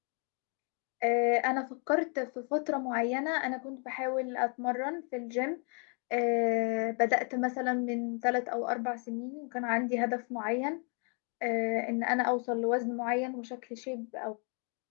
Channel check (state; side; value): quieter; right; 38.4 dB